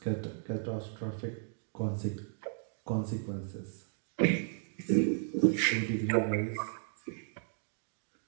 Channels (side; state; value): left; silent; digital silence